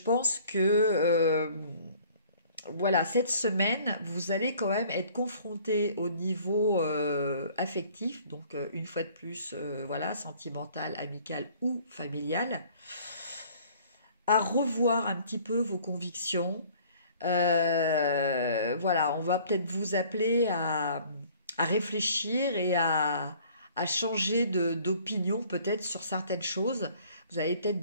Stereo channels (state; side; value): inverted; both; correlation -0.54